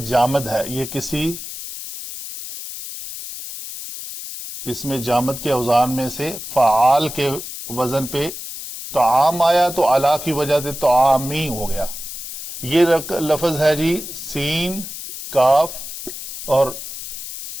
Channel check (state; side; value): noise; left; hiss, 9 dB below the sound